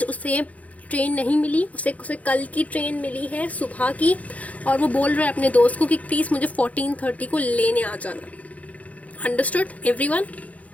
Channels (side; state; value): right; late; 0.069 ms